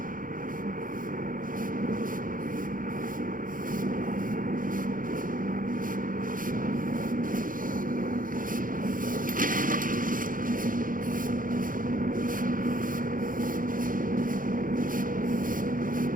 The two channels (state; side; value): late; left; 0.40 ms